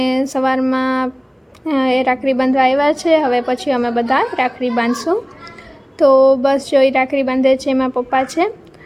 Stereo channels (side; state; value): both; identical; correlation 1.00